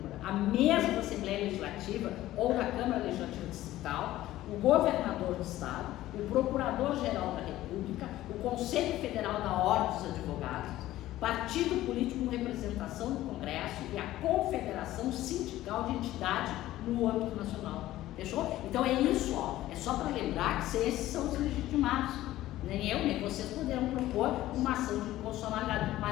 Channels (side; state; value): right; quieter; 15.1 dB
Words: a mesa da Assembleia Legislativa ou da Câmara Legislativa Distrital, o governador do Estado, o Procurador-Geral da República, o Conselho Federal da Ordem dos Advogados, partido político com representação no Congresso e a Confederação Sindical de Entidade no âmbito nacional. Fechou? Então é isso, ó. É só para lembrar que esses são os legitimados. Nem eu, nem vocês poderão propor uma ação de inconstitucionalidade,